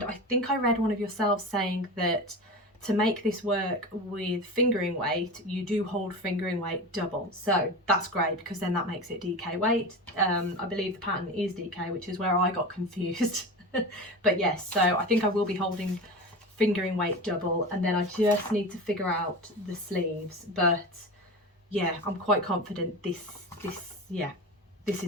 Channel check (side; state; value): both; normal; correlation 0.28